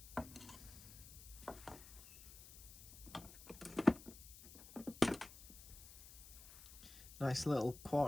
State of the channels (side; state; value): left; noise; hiss, 16 dB below the sound